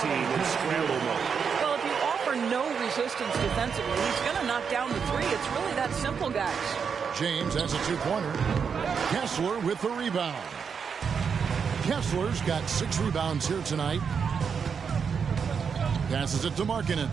in scramble mode. Well, if you offer no resistance defensively, he's going to knock down the three. It's really that simple, guys. James has a 2-pointer. Kessler with the rebound. Kessler's got 6 rebounds here tonight. Passes it to Markkanen.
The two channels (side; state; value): left; quieter; 6.4 dB